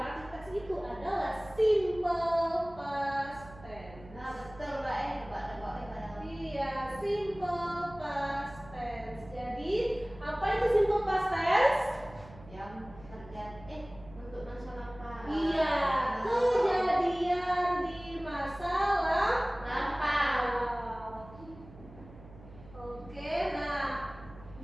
teks itu adalah simple past tense. Nah betul Kak, nebak-nebak kadang. Iya, simple past tense. Jadi, apa itu simple past tense? Yang terjadi untuk masa lampau. Iya, kejadian di masa lampau. Oke, nah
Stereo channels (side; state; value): right; noise; hum, 19 dB below the sound